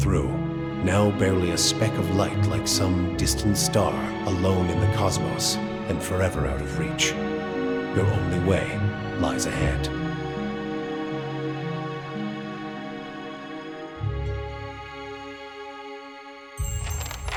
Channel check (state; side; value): identical; both; correlation 1.00